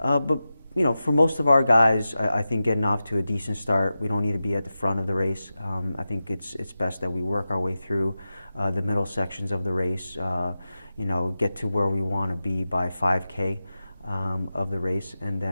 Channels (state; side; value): inverted; both; correlation -0.93